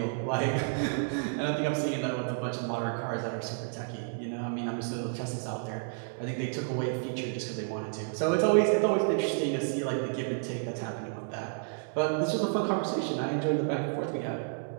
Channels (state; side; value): silent; left; digital silence